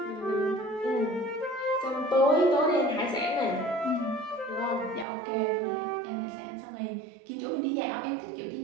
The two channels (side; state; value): left; drops out; at 5.1 s